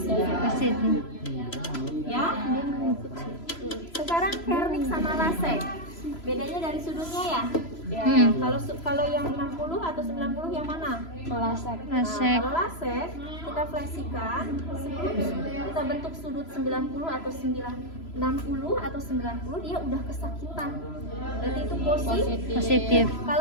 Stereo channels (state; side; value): late; right; 3.0 ms